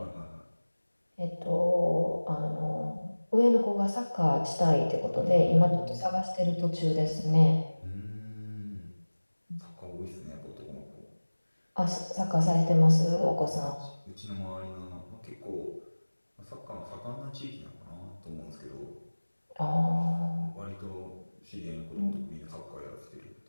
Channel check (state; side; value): inverted; both; correlation -1.00